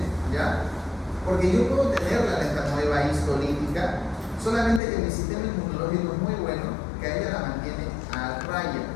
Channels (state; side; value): drops out; right; at 4.8 s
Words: ¿ya? Porque yo puedo tener la entamoeba histolítica, solamente que mi sistema inmunológico es muy bueno, que a ella la mantiene a raya.